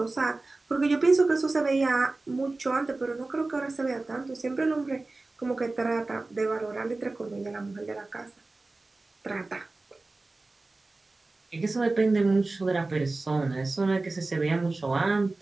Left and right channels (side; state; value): left; quieter; 3.3 dB